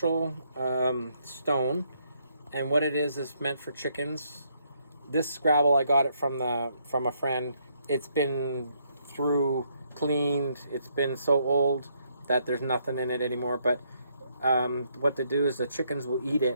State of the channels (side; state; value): both; inverted; correlation -0.73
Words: stone, and what it is meant for chickens. This gravel, I got it from a friend. It's been cleaned. It's been so old that there's nothing in it anymore. But what they do is the chickens will eat